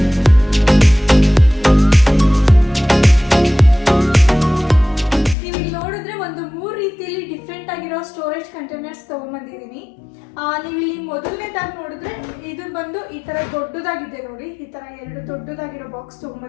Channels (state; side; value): drops out; right; at 5.4 s